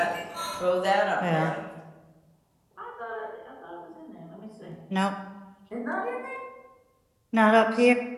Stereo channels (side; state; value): both; identical; correlation 1.00